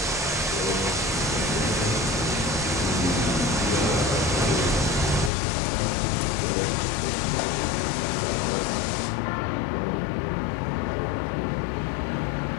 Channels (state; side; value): drops out; right; at 5.3 s